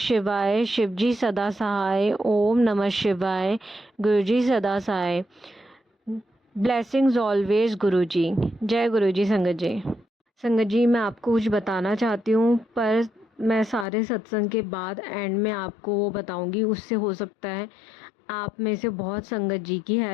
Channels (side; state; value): right; drops out; at 13.9 s